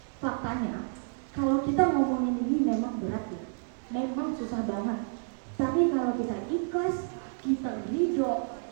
Faktanya, kalau kita ngomongin ini memang berat ya, memang susah banget. Tapi kalau kita ikhlas, kita ridho,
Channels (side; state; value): left; silent; 58 dB below the other